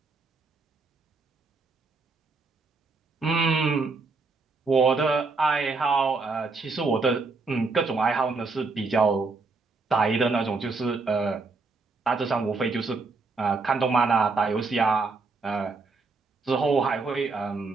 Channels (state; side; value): quieter; left; 4.0 dB